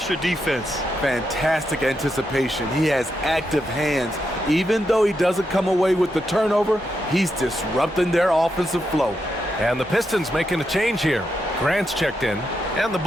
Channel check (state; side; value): normal; both; correlation 0.84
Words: defense. Fantastic anticipation. He has active hands. Even though he doesn't come away with the turnover, he's disrupting their offensive flow. And the Pistons making a change here. Grant's checked in. And the